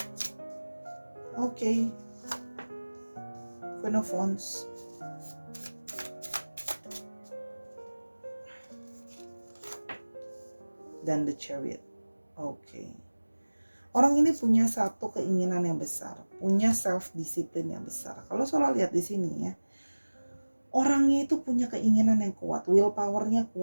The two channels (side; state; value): both; inverted; correlation -1.00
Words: oke, Queen of Wands, dan the Chariot. Oke. Orang ini punya satu keinginan yang besar, punya self discipline yang besar. Kalau Sora lihat di sini ya, orangnya itu punya keinginan yang kuat, willpower-nya